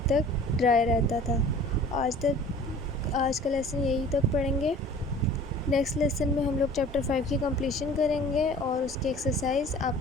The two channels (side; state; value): both; normal; correlation 0.46